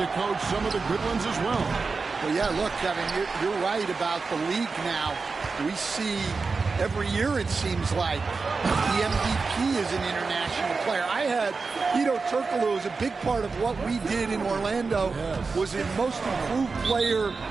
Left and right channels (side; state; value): left; quieter; 4.4 dB